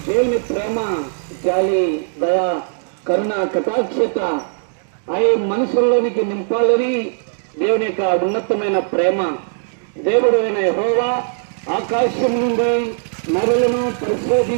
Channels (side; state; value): left; silent; digital silence